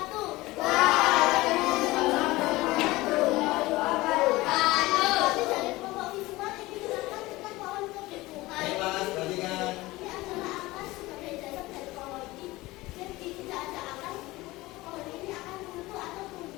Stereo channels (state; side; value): quieter; right; 19.7 dB